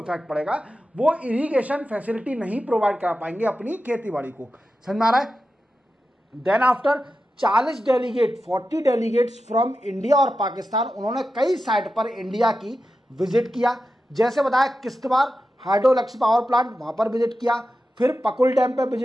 पड़ेगा। वो इरिगेशन फैसिलिटी नहीं प्रोवाइड कर पाएंगे अपनी खेती बाड़ी को। समझ में आ रहा है। Then after 40 delegate 40 delegates from India और पाकिस्तान, उन्होंने कई साइट पर इंडिया की विजिट किया। जैसे बताया Kishtwar hydro electric power plant, वहाँ पर विजिट किया, फिर पकुल डैम पर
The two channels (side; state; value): both; normal; correlation 0.91